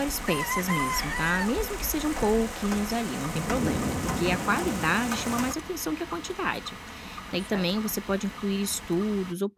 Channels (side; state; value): both; identical; correlation 1.00